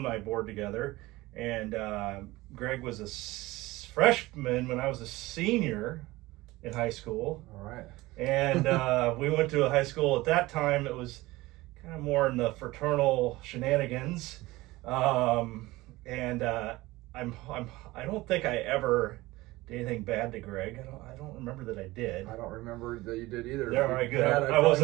board together. And Greg was a freshman when I was a senior in high school. All right. And we went to a high school at that time. It was kind of more in the fraternal shenanigans. I don't think I ever did anything bad to Greg. I don't remember that I did. I don't remember that you did either. Yeah, all right, good. I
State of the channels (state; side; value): quieter; left; 19.5 dB